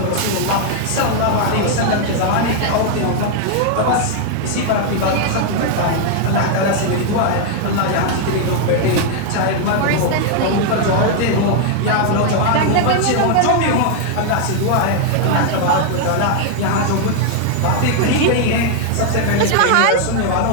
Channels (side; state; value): both; different; correlation 0.00